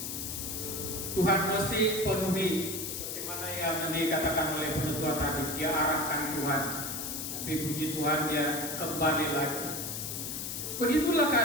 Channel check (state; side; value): noise; left; hiss, 5 dB below the sound